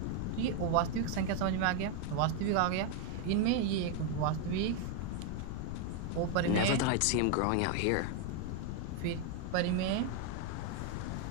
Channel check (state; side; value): different; both; correlation 0.01